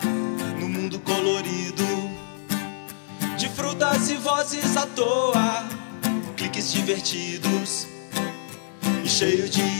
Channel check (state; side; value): silent; right; 61 dB below the other